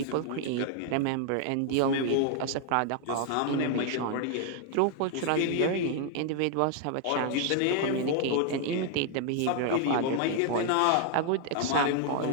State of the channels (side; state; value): both; different; correlation 0.00